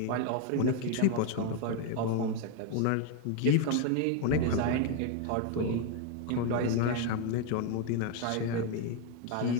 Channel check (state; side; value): different; both; correlation 0.01